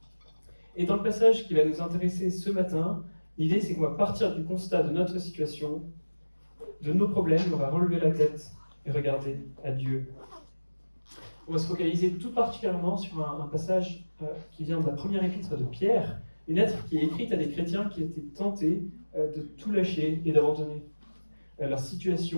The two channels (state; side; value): inverted; both; correlation -1.00